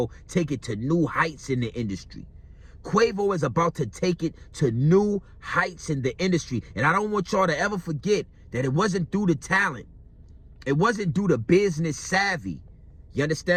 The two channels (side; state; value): both; identical; correlation 1.00